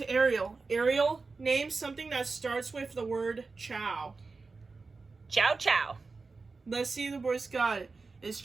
Ariel. Ariel, name something that starts with the word chow. Chow chow. Let's see if the boys got it. Is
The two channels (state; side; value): quieter; left; 4.1 dB